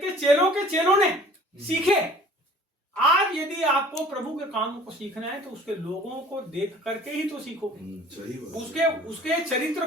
के चेलों ने सीखे। आज यदि आपको प्रभु के कामों को सीखना है तो उसके लोगों को देख करके ही तो सीखोगे। उसके चरित्र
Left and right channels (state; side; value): normal; both; correlation 0.50